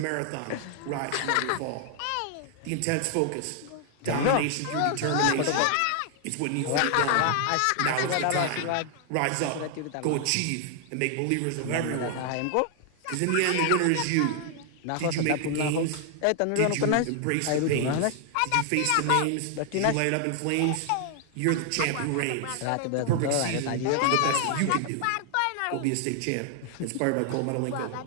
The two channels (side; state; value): both; different; correlation 0.00